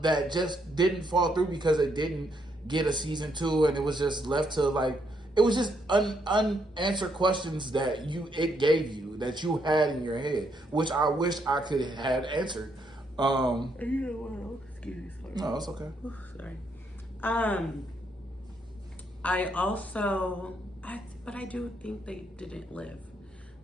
that just didn't fall through because it didn't get a season 2, and it was just left to it was just unanswered questions that it gave you, that you had in your head, which I wish I could have had answered. Excuse me, sorry. No, it's okay. Ooh, sorry. But I do think they didn't live,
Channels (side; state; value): both; normal; correlation 0.75